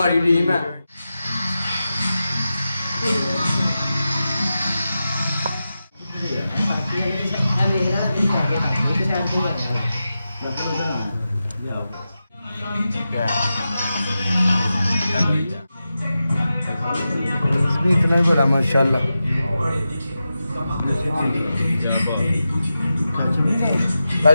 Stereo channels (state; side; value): inverted; both; correlation -0.91